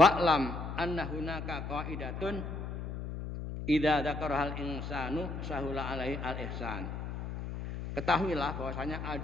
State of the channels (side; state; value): left; noise; hum, 6 dB below the sound